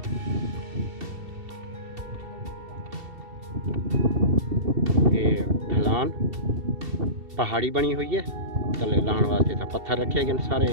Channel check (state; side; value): late; left; 2.7 ms